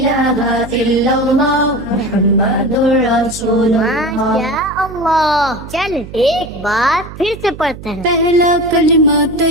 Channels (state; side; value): noise; right; hum, 14 dB below the sound